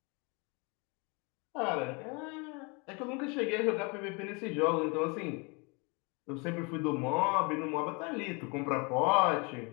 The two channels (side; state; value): right; quieter; 30.8 dB